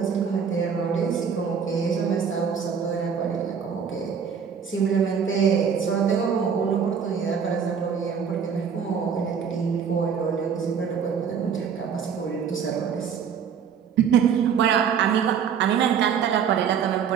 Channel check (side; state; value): left; quieter; 7.1 dB